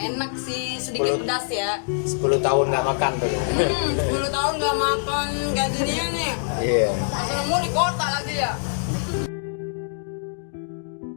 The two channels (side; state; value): right; silent; digital silence